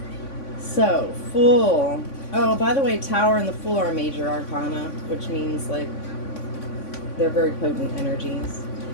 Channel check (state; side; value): late; right; 3.5 ms